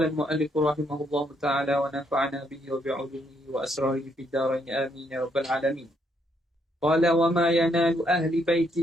al-mu'allif rahimahullahu ta'ala wa nafa'ana bihi wa bi'ulumihi wa asrarihi fid darain amin ya rabbal alamin. Qala wa ma yanalu ahli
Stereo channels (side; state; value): both; normal; correlation 0.73